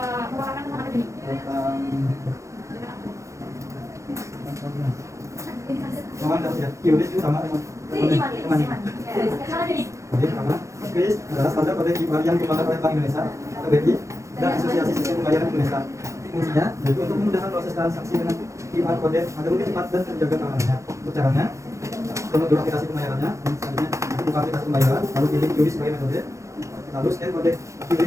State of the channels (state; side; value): late; left; 0.15 ms